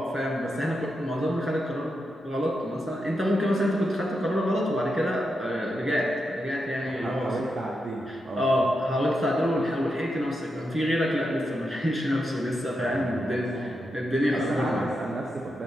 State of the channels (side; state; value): both; normal; correlation 0.86